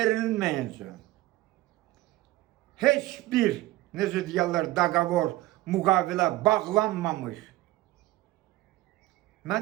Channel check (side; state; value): left; quieter; 17.6 dB